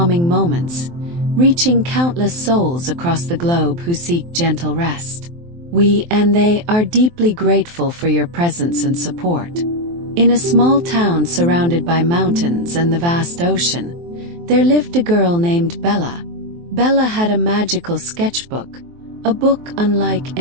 moments, reaching countless souls across the globe who seek gentle rest. We and they are deeply grateful for your presence and support. In a small town surrounded by mountains and the vast ocean, there lived a girl named Bella. Bella had a magical sketchbook, a book unlike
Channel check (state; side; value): late; left; 23 ms